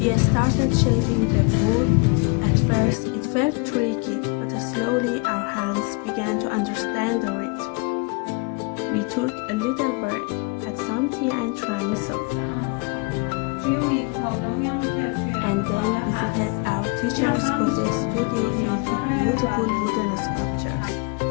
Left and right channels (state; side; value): quieter; right; 30.7 dB